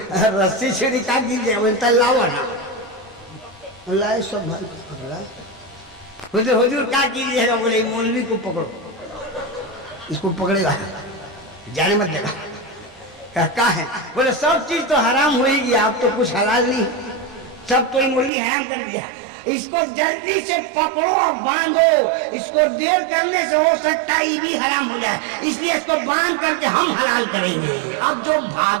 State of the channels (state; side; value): drops out; left; at 18.3 s